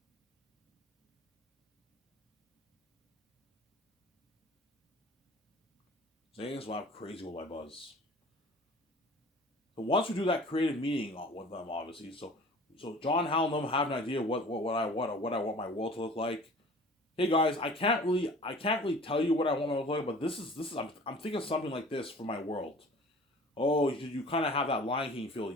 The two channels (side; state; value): both; normal; correlation 0.45